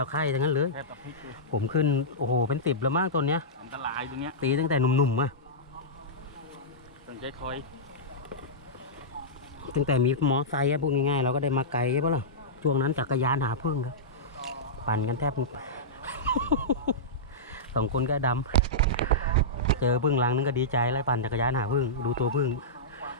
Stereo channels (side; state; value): both; normal; correlation -0.14